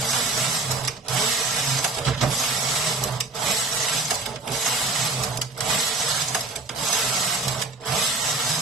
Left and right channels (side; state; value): left; quieter; 3.4 dB